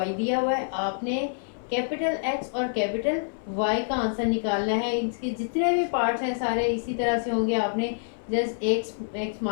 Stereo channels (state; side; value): silent; right; 57 dB below the other